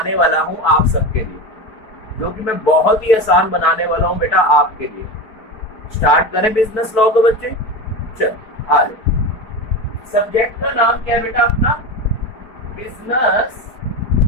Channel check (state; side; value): late; right; 4.5 ms